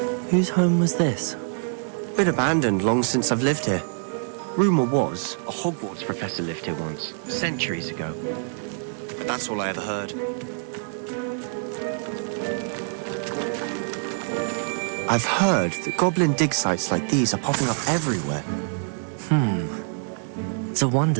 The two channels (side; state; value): left; silent; 62 dB below the other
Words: Whose home was this? Been abandoned long since I've lived here. Rumour was a Hogwarts professor lived here once, centuries ago. But that's all I ever heard. I've heard that goblin dig sites like these are popping up everywhere. It's a